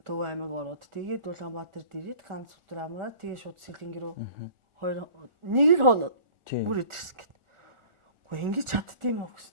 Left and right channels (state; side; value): late; left; 1.4 ms